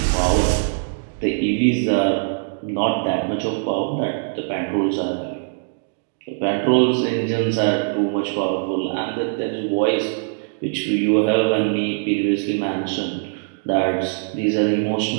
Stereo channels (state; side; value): silent; left; digital silence